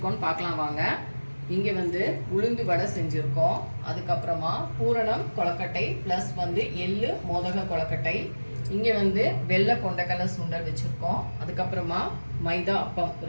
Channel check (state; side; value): inverted; both; correlation -1.00